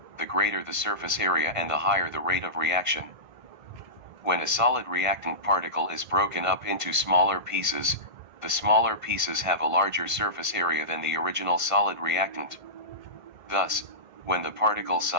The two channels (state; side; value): late; left; 1.5 ms